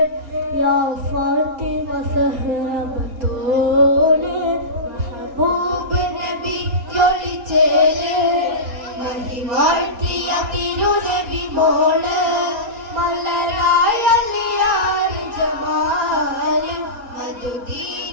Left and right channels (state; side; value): late; left; 4.3 ms